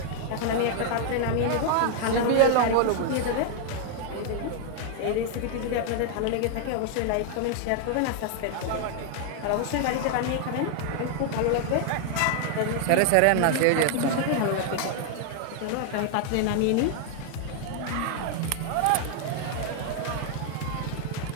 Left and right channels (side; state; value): both; different; correlation 0.00